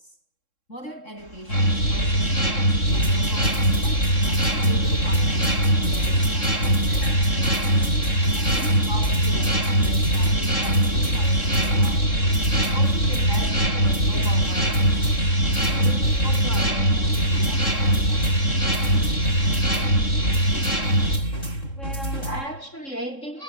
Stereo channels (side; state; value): right; late; 3.7 ms